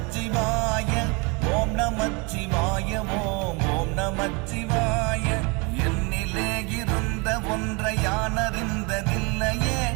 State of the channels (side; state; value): left; quieter; 29.6 dB